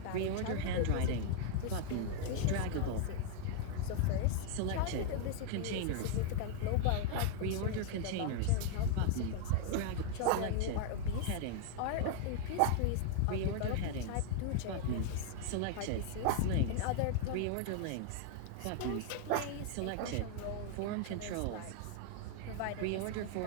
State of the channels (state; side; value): different; both; correlation 0.00